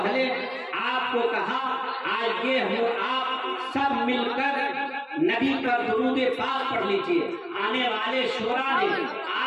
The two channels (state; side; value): identical; both; correlation 1.00